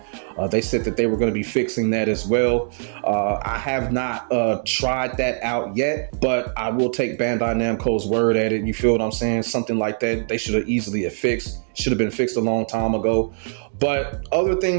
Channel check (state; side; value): silent; left; digital silence